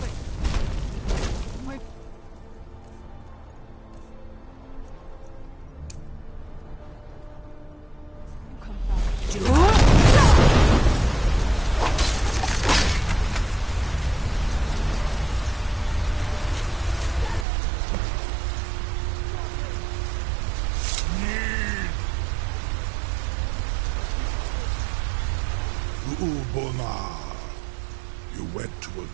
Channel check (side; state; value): left; drops out; at 17.4 s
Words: You went to a